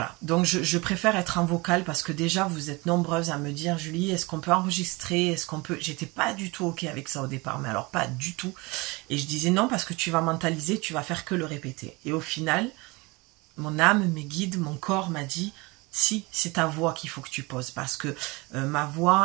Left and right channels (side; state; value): left; quieter; 24.9 dB